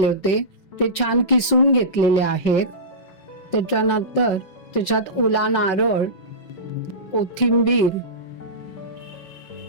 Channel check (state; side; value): late; right; 5.4 ms